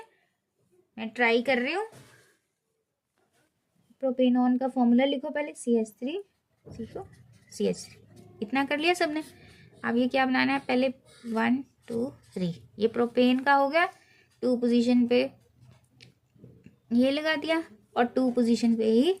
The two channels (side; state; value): both; identical; correlation 1.00